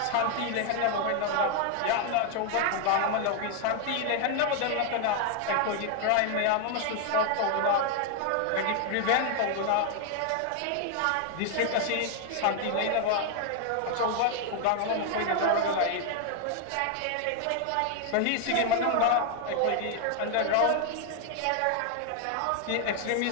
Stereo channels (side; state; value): both; different; correlation 0.00